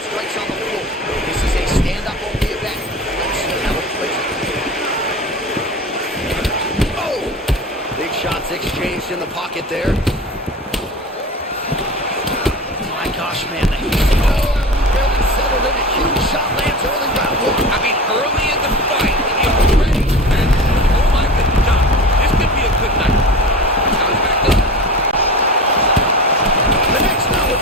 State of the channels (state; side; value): normal; both; correlation 0.32